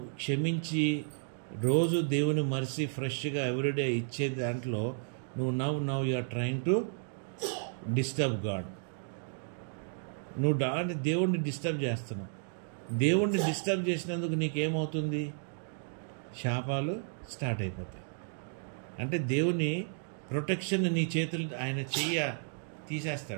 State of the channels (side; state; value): left; silent; digital silence